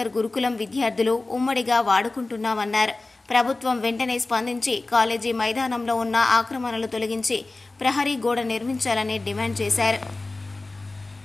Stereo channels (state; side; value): quieter; right; 3.2 dB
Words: గురుకులం విద్యార్థులు ఉమ్మడిగా వాడుకుంటున్నామన్నారు. ప్రభుత్వం వెంటనే స్పందించి కాలేజీ మైదానంలో ఉన్న ఆక్రమణలు తొలగించి ప్రహరీ గోడ నిర్మించాలని డిమాండ్ చేశారు.